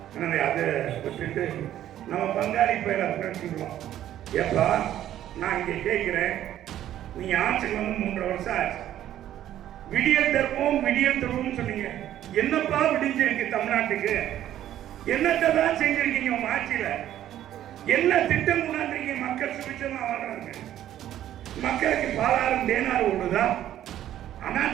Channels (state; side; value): quieter; left; 12.0 dB